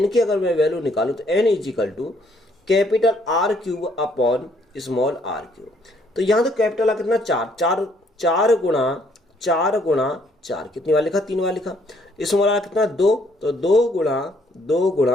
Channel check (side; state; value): both; normal; correlation 0.66